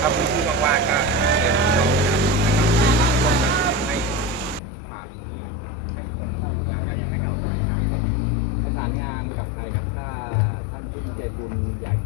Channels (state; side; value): drops out; right; at 4.6 s